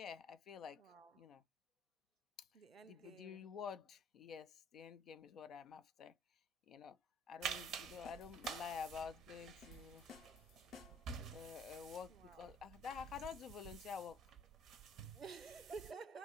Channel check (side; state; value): both; normal; correlation 0.57